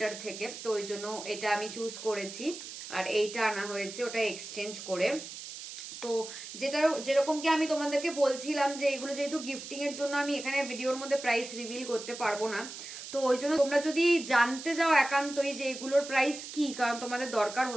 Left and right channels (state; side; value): noise; right; hiss, 11 dB below the sound